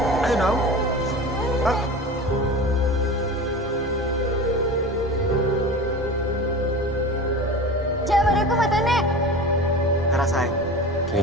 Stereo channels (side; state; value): both; normal; correlation 0.32